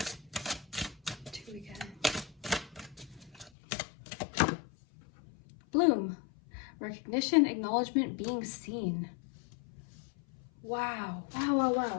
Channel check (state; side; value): drops out; right; at 3.5 s